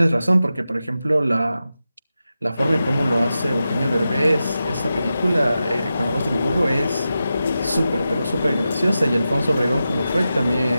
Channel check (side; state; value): both; inverted; correlation -0.91